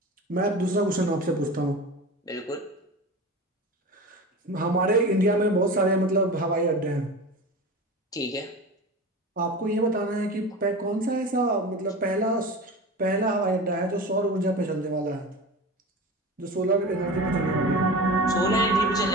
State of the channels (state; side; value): normal; both; correlation 0.31